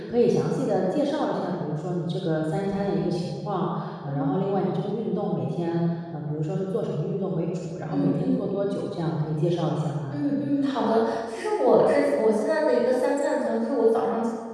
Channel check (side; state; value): both; identical; correlation 1.00